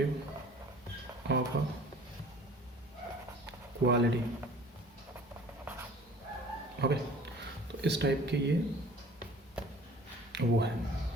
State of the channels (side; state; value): both; normal; correlation 0.48